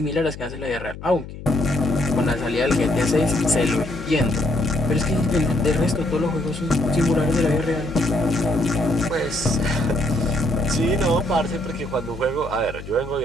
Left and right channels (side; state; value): left; noise; hum, 12 dB below the sound